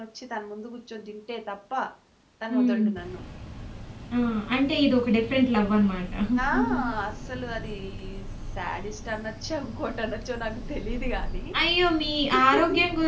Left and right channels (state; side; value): identical; both; correlation 1.00